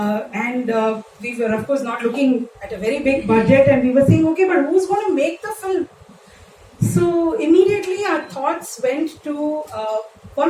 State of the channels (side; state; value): both; identical; correlation 1.00